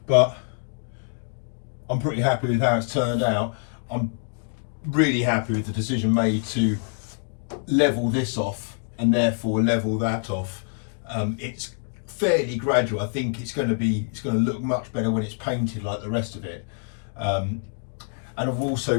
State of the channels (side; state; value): right; silent; 61 dB below the other